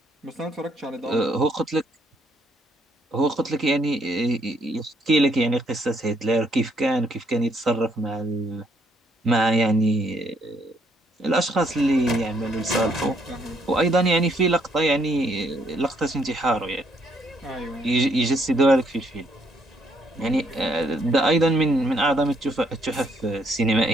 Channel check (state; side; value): normal; both; correlation 0.69